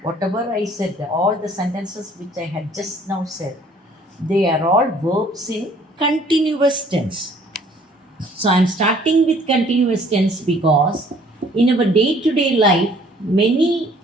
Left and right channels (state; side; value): normal; both; correlation 0.57